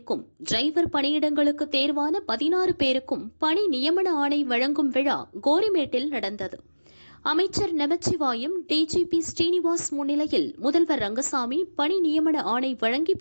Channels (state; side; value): inverted; both; correlation -1.00